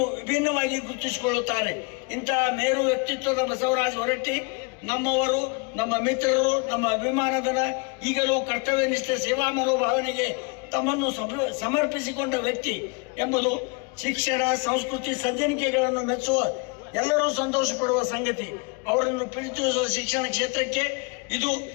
ವಿಭಿನ್ನವಾಗಿ ಗುರುತಿಸಿಕೊಳ್ಳುತ್ತಾರೆ. ಇಂತಹ ಮೇರು ವ್ಯಕ್ತಿತ್ವದ ಬಸವರಾಜ್ ಹೊರಟ್ಟಿ ನಮ್ಮವರು, ನಮ್ಮ ಮಿತ್ರರು, ನಮ್ಮ ಅಭಿಮಾನಧನ, ಈಗಲೂ ಕರ್ತವ್ಯನಿಷ್ಠ ಸೇವಾ ಮನೋಭಾವನೆಗೆ ತಮ್ಮನ್ನು ಸಮರ್ಪಿಸಿಕೊಂಡ ವ್ಯಕ್ತಿ ಎಂಬುದು ಶಿಕ್ಷಣ, ಸಂಸ್ಕೃತಿ, ಸಜ್ಜನಿಕೆಗಳನ್ನು ಮೆಚ್ಚುವ, ಎಲ್ಲರೂ ಸಂತೋಷ ಪಡುವ ಸಂಗತಿ. ಅವರನ್ನು ಪ್ರೀತಿಸುವ ಶಿಕ್ಷಣ ಕ್ಷೇತ್ರಕ್ಕೆ ಇದು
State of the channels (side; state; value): right; quieter; 31.1 dB